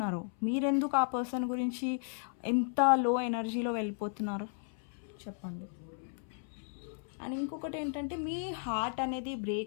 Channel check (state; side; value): silent; right; 55 dB below the other